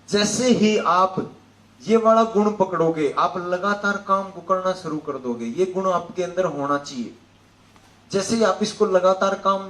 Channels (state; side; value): identical; both; correlation 1.00